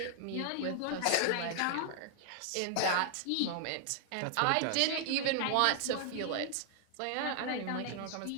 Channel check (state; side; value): different; both; correlation 0.00